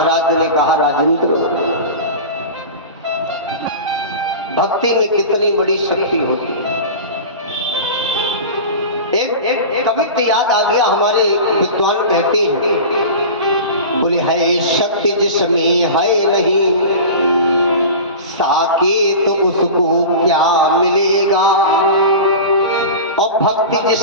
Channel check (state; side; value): inverted; both; correlation -0.31